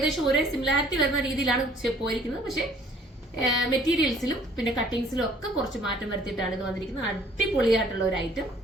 ഒരേ സിമിലാരിറ്റി വരുന്ന രീതിയിലാണ് പോയിരിക്കുന്നത്. പക്ഷേ മെറ്റീരിയൽസിലും പിന്നെ കട്ടിങ്സിലും ഒക്കെ കുറച്ച് മാറ്റം വരുത്തിയിട്ടാണ് ഇത് വന്നിരിക്കുന്നത്. അടിപൊളിയായിട്ടുള്ള ഒരു ഐറ്റം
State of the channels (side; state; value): both; normal; correlation 0.57